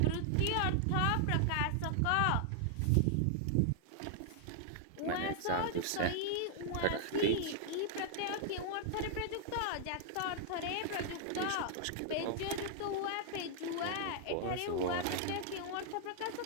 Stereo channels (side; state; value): both; different; correlation -0.01